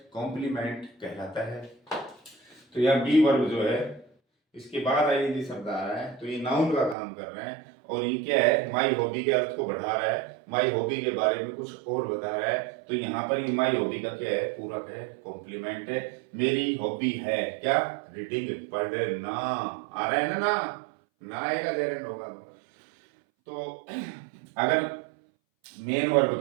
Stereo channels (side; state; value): left; drops out; at 7.0 s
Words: कॉम्प्लीमेंट कहलाता है। तो यह बी वर्ब जो है इसके बाद आईएनजी शब्द आ रहा है, तो ये नाउन का काम कर रहे हैं, और ये क्या है? माई हॉबी के अर्थ को बढ़ा रहा है, माई हॉबी के बारे में कुछ और बता रहा है। तो यहाँ पर ये माई हॉबी का क्या है? पूरक है, कॉम्प्लीमेंट है। मेरी हॉबी है क्या? रीडिंग, पढ़ना। आ रहा है ना? ना आएगा जेरंड होगा तो अगर मेन वर्ब